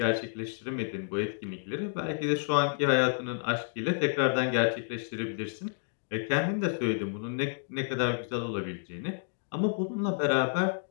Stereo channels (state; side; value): silent; right; digital silence